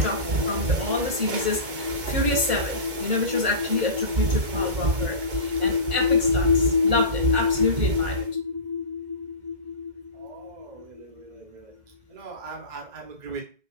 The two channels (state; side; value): late; left; 2.0 ms